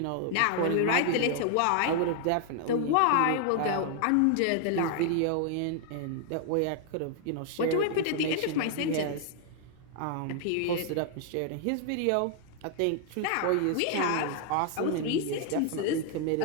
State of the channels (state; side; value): different; both; correlation 0.00